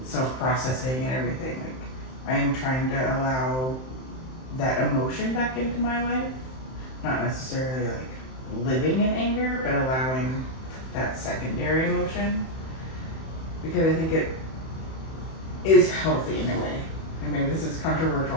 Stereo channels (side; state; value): right; late; 31 ms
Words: self-processing and everything, like I am trying to allow that emotion back into my life. Not necessarily like living in anger, but allowing that secondary emotion, because I think it is healthy in a way. And maybe this is